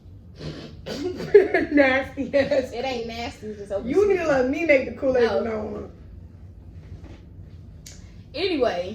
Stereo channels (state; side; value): identical; both; correlation 1.00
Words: Nasty ass. It ain't nasty. It's just open. You need to let me make the Kool-Aid No. from now on.